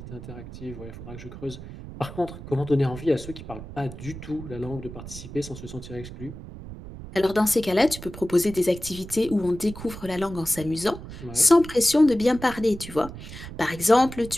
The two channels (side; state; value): right; noise; rumble, 12 dB below the sound